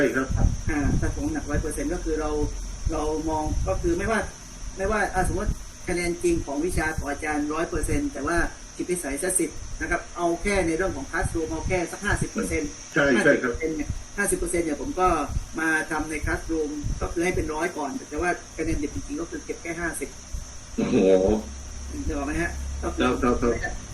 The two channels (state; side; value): identical; both; correlation 1.00